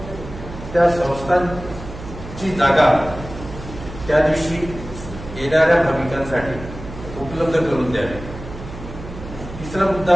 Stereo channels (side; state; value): right; noise; hum, 12 dB below the sound